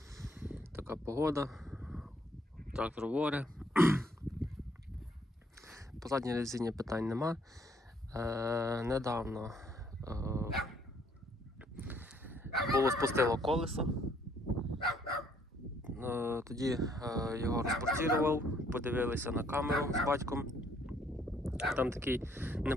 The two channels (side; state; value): both; normal; correlation 0.66